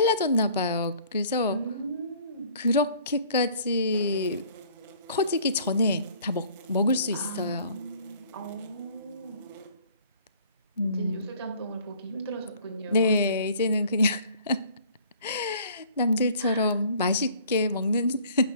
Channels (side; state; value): both; inverted; correlation -0.54